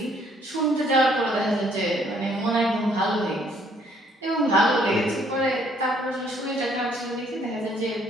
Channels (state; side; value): normal; both; correlation 0.65